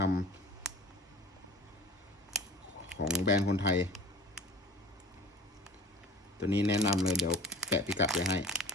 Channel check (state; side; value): normal; both; correlation 0.41